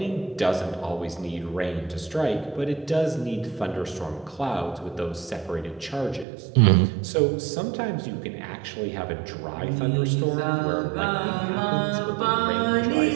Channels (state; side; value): drops out; left; at 6.2 s